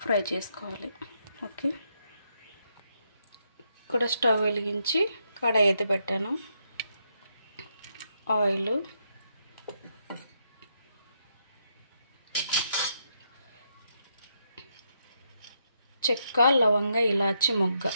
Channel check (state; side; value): inverted; both; correlation -0.78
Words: ఫ్రై చేసుకోవాలి. ఓకే, ఇక్కడ స్టవ్ వెలిగించి కడాయి అయితే పెట్టాను. ఆయిల్, చెక్క, లవంగ, ఇలాచి, మొగ్గ,